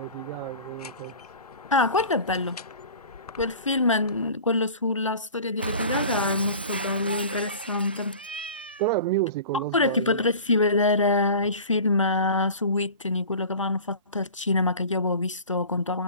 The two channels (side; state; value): both; inverted; correlation -0.39